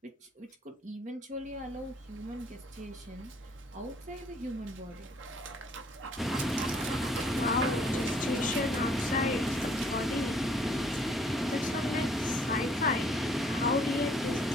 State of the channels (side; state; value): both; normal; correlation 0.61